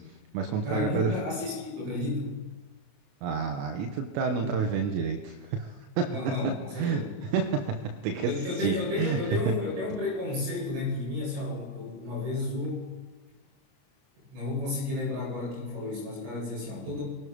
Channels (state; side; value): late; left; 28 ms